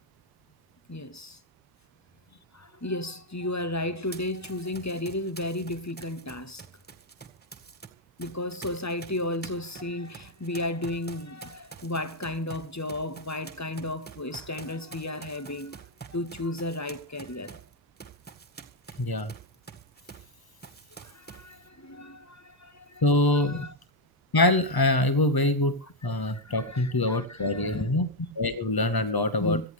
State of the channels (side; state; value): both; normal; correlation 0.02